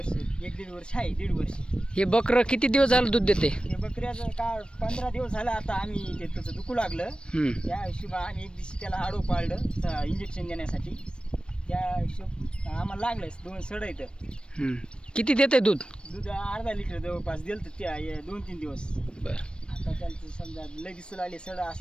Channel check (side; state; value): right; late; 0.055 ms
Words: 1-1.5 वर्ष आहे, 1.5 वर्ष. हे बकरं किती दिवस झालं दूध देते? हे बकऱ्याचं का 15 दिवस झालं आता आम्ही ते त्याचं दुखू लागलं. त्या हिशोबा आम्ही एक दिवशी त्याला आडो पाळलं इंजेक्शन देण्यासाठी. त्या हिशोब आम्हाला लागलंच 2 सडं इथं. किती देते दूध? दूध अर्धा लिटर जवळपास दिलं तर ते 2-3 दिवस. बरं. आता त्यांचं समजा लगेच आले सडं